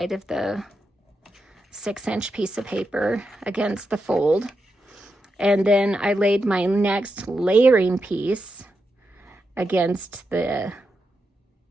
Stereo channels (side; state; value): both; normal; correlation 0.86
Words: of the 6-inch piece of paper against the fold, and then I laid my next layering piece against the